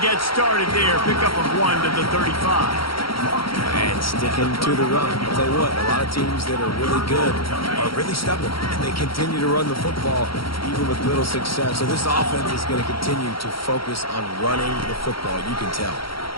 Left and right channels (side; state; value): right; late; 0.74 ms